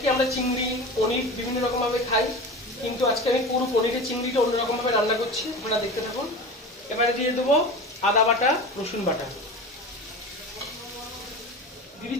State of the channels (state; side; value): normal; both; correlation 0.31